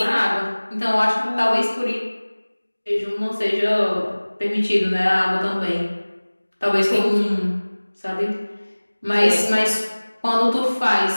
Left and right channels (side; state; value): both; inverted; correlation -1.00